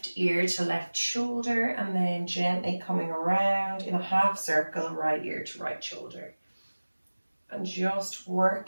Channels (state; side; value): inverted; both; correlation -1.00